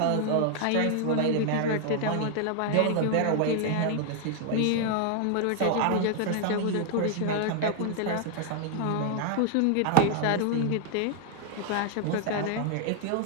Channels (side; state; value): both; different; correlation 0.00